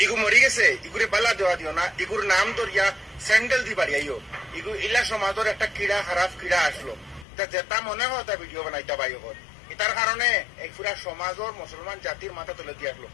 ইগু মরি গেছে ইগুরে বালা দেওয়া দিও না ইগুর নাম ধরিয়া স্যান্ডেল দি বাড়ি আইও ইগু ইলা সমাজের একটা ক্রীড়া খারাপ ক্রীড়া আসলো তা যেটা মনে হয় তা ভিডিও বানাইতে পাই ওর এটার কারণে এই পুরা সমাজের মুসলমান জাতির মাথা তুলে দিয়ে আসলো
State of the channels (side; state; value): right; drops out; at 7.2 s